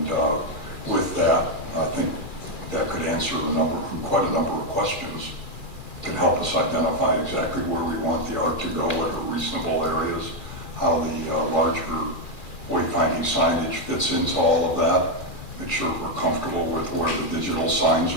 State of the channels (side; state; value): right; late; 2.4 ms